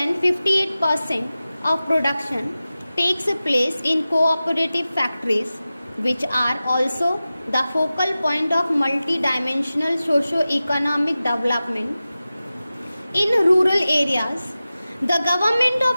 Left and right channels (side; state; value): both; inverted; correlation -0.95